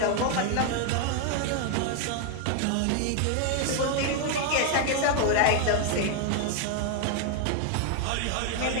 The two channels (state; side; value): different; both; correlation 0.00